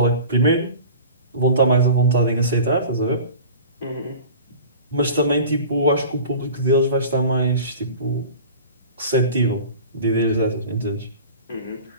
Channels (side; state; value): both; inverted; correlation -0.39